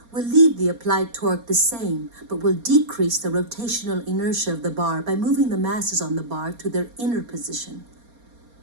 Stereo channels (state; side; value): late; left; 4.3 ms